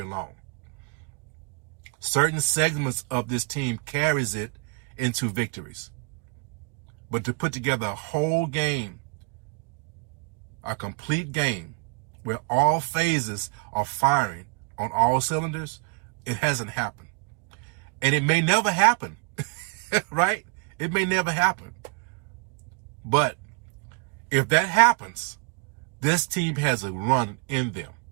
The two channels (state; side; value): quieter; left; 34.4 dB